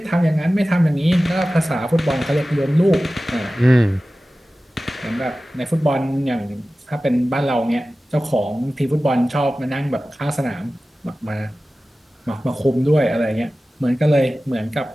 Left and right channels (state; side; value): normal; both; correlation 0.96